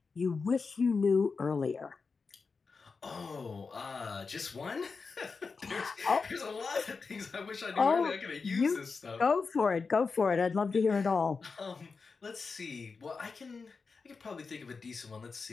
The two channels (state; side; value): quieter; right; 4.7 dB